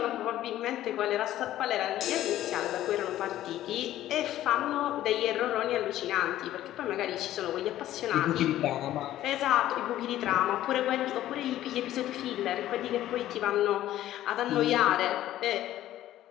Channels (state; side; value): quieter; right; 13.5 dB